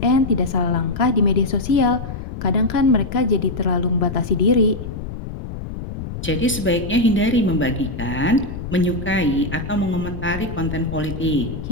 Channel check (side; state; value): left; noise; rumble, 8 dB below the sound